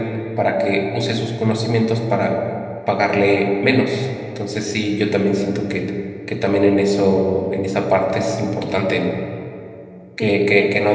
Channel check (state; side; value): identical; both; correlation 1.00